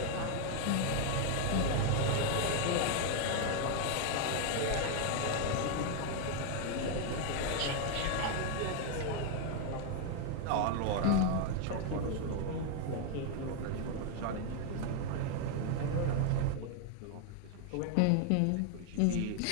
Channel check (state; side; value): different; both; correlation 0.00